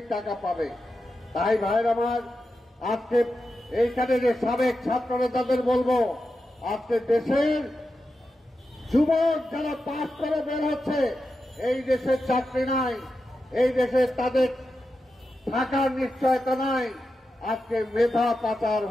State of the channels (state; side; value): normal; both; correlation 0.89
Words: টাকা পাবে? তাই ভাইয়ের আমার, আজকে এইখানে যে সাবেক ছাত্র নেতাদের বলবো, আজকে দেশের যুবক যারা পাস করে বের হচ্ছে, এই দেশের চাকরি নাই, এই দেশে তাদের থাকার নিশ্চয়তা নাই, আজকে মেধা পাচার